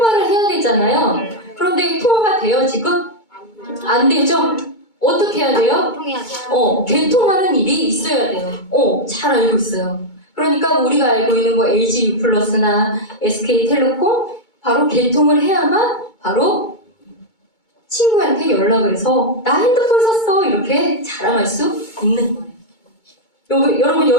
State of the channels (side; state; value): right; late; 2.2 ms